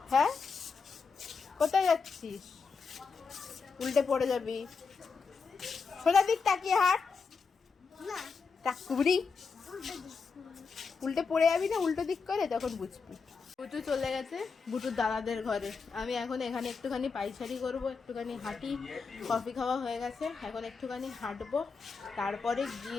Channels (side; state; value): right; quieter; 5.1 dB